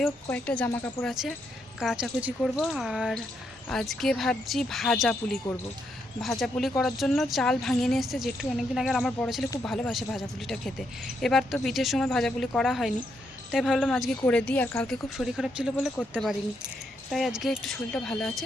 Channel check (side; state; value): both; normal; correlation 0.78